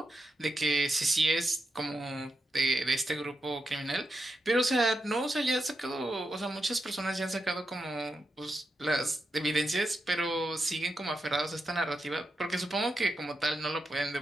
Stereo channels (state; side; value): normal; both; correlation 0.87